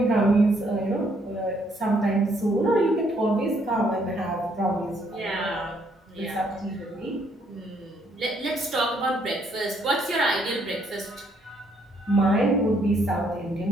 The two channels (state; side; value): normal; both; correlation 0.69